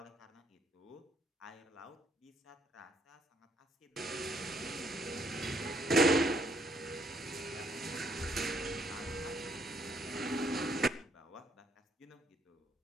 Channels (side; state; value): both; normal; correlation 0.70